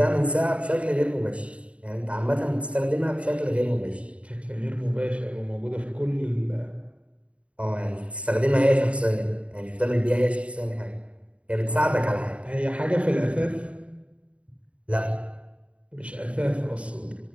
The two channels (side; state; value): left; late; 0.062 ms